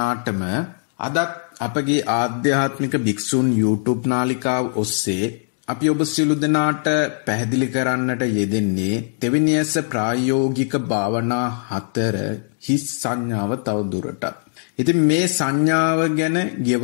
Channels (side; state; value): right; silent; digital silence